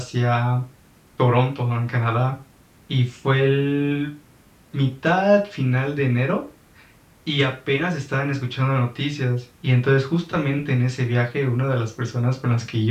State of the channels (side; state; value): both; identical; correlation 1.00